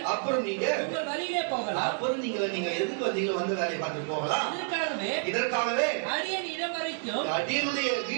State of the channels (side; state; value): left; silent; digital silence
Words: உங்கள் வழியிலே போகலாம். அப்புறம் நீங்க எதுக்கு வந்தீங்களோ வந்து வேலையை பார்த்து போகலாம். இதற்காகவே அடியனுடைய